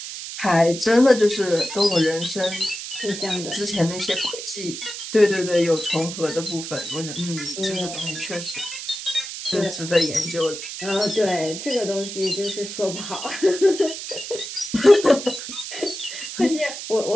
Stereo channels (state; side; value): noise; right; hiss, 8 dB below the sound